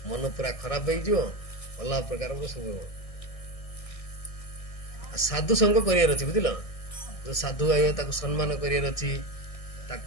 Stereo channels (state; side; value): late; right; 1.6 ms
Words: ମନ ପୁରା ଖରାପ ହେଇଯିବ, ଅଲଗା ପ୍ରକାର ସବୁ ହବ। ସାଧୁ ସଙ୍ଗ କରିବାର ଅଛି, ବୁଝିଲ, ଯୋଉ ସାଧୁ ଆଇବ ତାକୁ ସମ୍ମାନ କରିବାର ଅଛି,